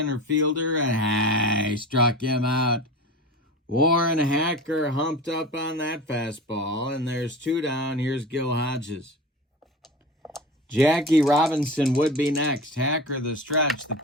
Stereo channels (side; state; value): both; normal; correlation 0.32